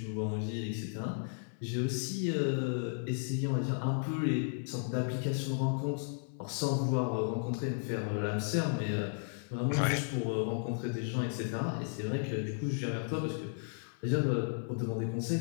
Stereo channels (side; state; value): right; silent; digital silence